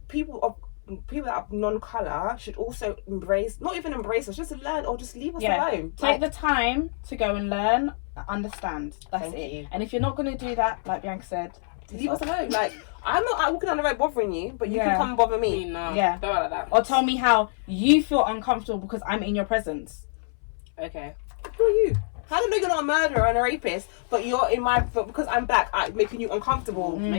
people people that are non-colour should also not even embrace us, just learn or just leave us alone. Take the time to go and learn, understand. That's Thank it. you. And if you're not going to do that, like Bianca said, leave us alone. Like, I'm not out walking on the road bothering you, but you can come and bother me. No, yeah. don't like that. Or tell me how you feel uncomfortable because I'm in your presence. Okay. Who are you? How do I know you're not a murderer and a rapist, but because I'm black, I'm making you uncomfortable?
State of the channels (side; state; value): right; silent; 61 dB below the other